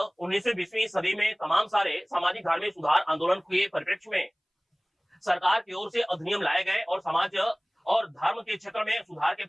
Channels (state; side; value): identical; both; correlation 1.00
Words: 19वीं-20वीं सदी में तमाम सारे सामाजिक धार्मिक सुधार आंदोलन के परिप्रेक्ष्य में सरकार की ओर से अधिनियम लाए गए और समाज और धर्म के क्षेत्र में सुधार के